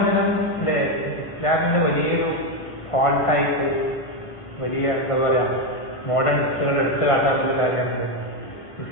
അല്ലേ ഇസ്ലാമിന്റെ വലിയൊരു ഫോൾട്ടായിട്ട് വലിയ എന്താ പറയുക മോഡേണിസ്റ്റുകൾ എടുത്തു കാട്ടാനുള്ള കാര്യമാണ്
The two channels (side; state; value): right; late; 1.5 ms